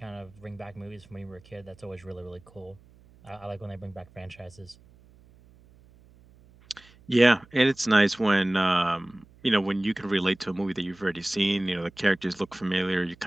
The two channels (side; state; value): right; noise; hum, 26 dB below the sound